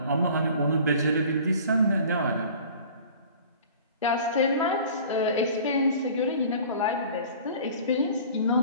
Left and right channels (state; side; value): inverted; both; correlation -0.45